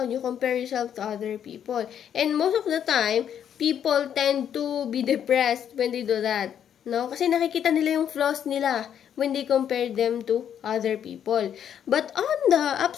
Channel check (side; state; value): right; quieter; 9.1 dB